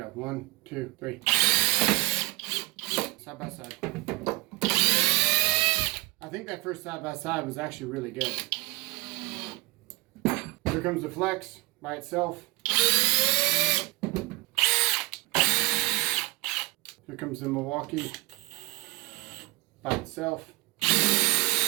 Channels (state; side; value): quieter; left; 22.0 dB